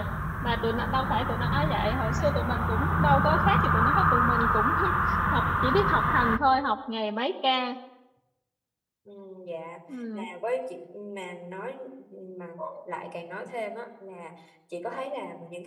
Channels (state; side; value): identical; both; correlation 1.00